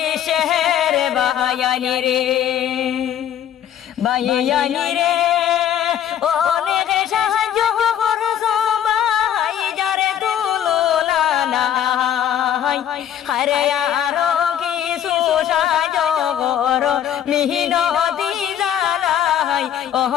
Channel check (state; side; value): quieter; right; 10.1 dB